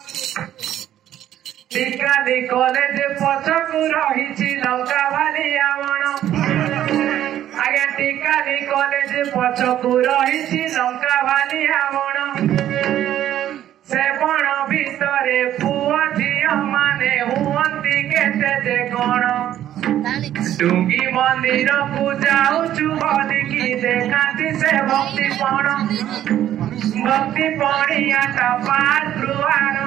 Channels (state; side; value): quieter; left; 11.8 dB